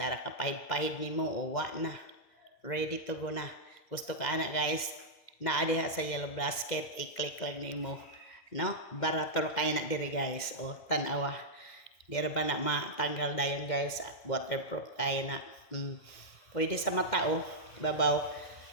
ka pahid-pahid ni mo. O, wa na. Ready to go na. Gusto ka anak guys. Naadiha sa yellow basket. I-click lang ni mo. No? Barator kayo na diri guys. O, tanawa. Dira ba na matanggal dayon guys. Waterproof kayo na. Pwede sa mata, oh. Babaw.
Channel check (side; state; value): right; late; 2.1 ms